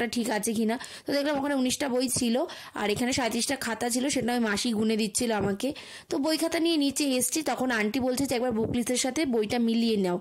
ঠিক আছে কিনা। তো দেখলাম ওখানে 19টা বই ছিল আর এখানে 37টা খাতা ছিল, সেটা আমি মাসি গুনে দিচ্ছিল আমাকে। তো বই খাতা নিয়ে নিচে এসছি, তখন আন্টি বলছে যে একবার বুক লিস্টের সাথে বইটা মিলিয়ে নাও,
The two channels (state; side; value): identical; both; correlation 1.00